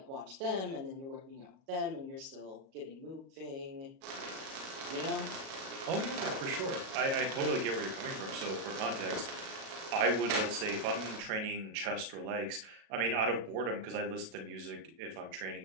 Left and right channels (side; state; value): left; late; 37 ms